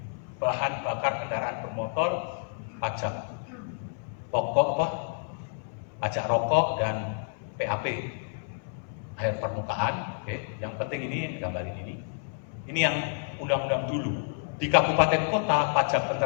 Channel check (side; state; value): right; silent; digital silence